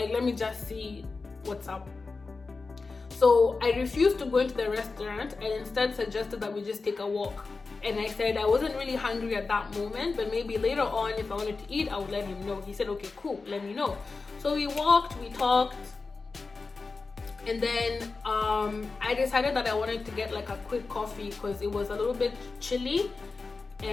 let me just see what's up. So I refused to go into the restaurant, and instead suggested that we just take a walk. And I said I wasn't really hungry at that moment, but maybe later on, if I wanted to eat, I would let him know. He said, okay, cool, let me know. So we walked, we talked, and then I decided that I wanted to get like a quick coffee, because it was a little bit chilly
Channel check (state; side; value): quieter; right; 4.1 dB